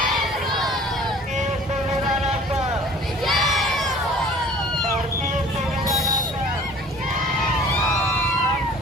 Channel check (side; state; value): both; normal; correlation 0.49